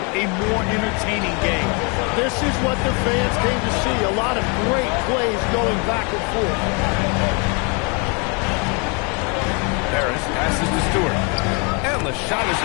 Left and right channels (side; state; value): right; quieter; 33.2 dB